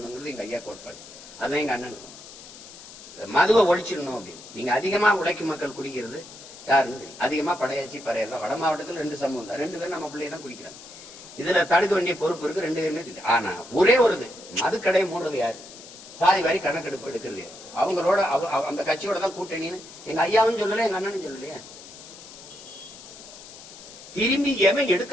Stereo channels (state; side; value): noise; left; hiss, 17 dB below the sound